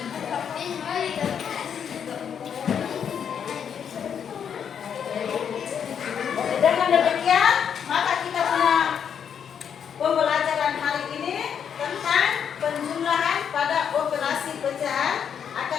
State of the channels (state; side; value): quieter; right; 7.9 dB